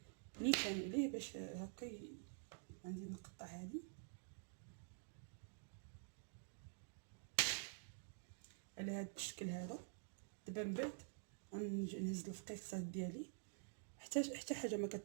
نيشان عليه باش هكا عندي نقطع هذه على هذا الشكل هذا. دابا من بعد غنجي نهز الفقيقصات ديالي حتى حاجه ما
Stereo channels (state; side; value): silent; left; digital silence